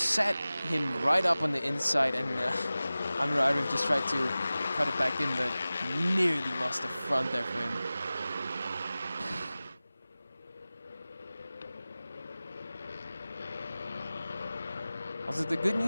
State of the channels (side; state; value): both; inverted; correlation -0.97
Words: him right up on the inside, and Amirul Arif just tried to cut it back in, but nearly lost the front there for him. Also, the good